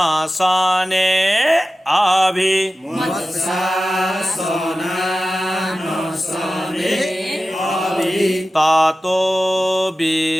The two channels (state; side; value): normal; both; correlation 0.95